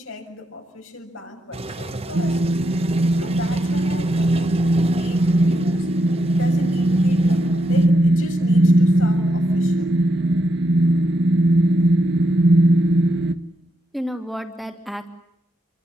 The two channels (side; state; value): both; normal; correlation 0.82